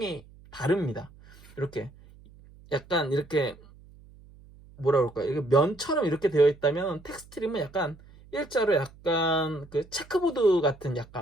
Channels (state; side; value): noise; right; hum, 23 dB below the sound